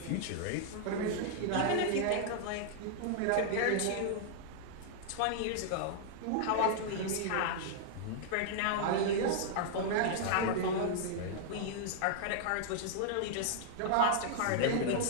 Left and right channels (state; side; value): different; both; correlation -0.01